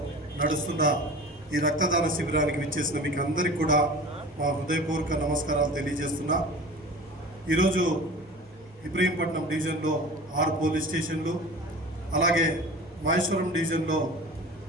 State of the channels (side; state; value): both; normal; correlation 0.38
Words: నడుస్తున్న ఈ రక్తదాన శిబిరానికి విచ్చేసిన మీకు అందరికీ కూడా మా హృదయపూర్వక నమస్కారాలు తెలియజేస్తున్నా. ఈరోజు ఇబ్రహీంపట్నం డివిజన్లో 6 పోలీస్ స్టేషన్లు, అలాగే మహేశ్వరం డివిజన్లో